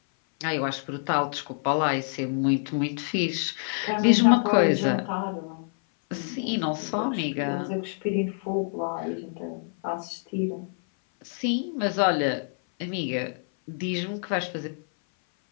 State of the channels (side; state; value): right; silent; 58 dB below the other